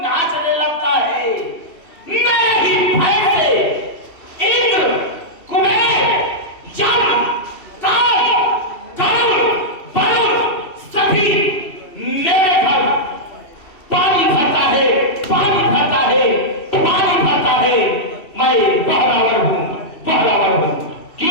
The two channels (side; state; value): right; late; 2.7 ms